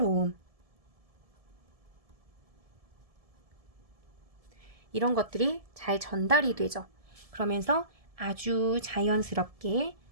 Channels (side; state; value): left; late; 1.7 ms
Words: 이런 것들이 잘 전달이 되죠. 그러면서 아주 자연스럽게